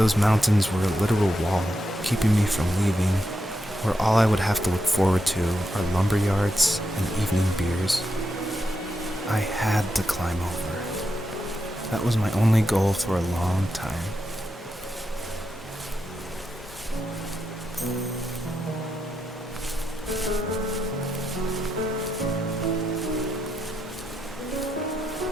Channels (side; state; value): both; normal; correlation 0.85